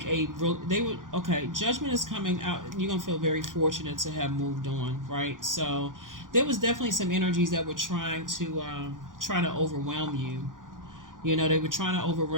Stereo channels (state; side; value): late; left; 0.89 ms